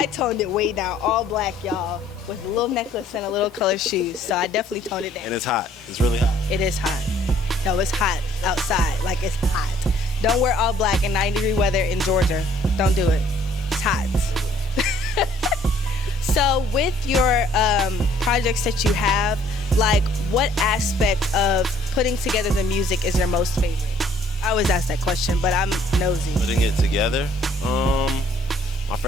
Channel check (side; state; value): both; normal; correlation 0.60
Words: toned it way down, all black, y'all, with a little necklace and a little colored shoes. So I definitely toned it down. And it's hot. It's really hot. It is hot. No, it's hot outside. Like, it's hot. Don't wear all black in 90-degree weather in Georgia. Don't do it. It's hot. So with your projects that you have, like, what aspect of putting together the music is your most favorite? I always ask that question, but I'm nosy. Putting it together, my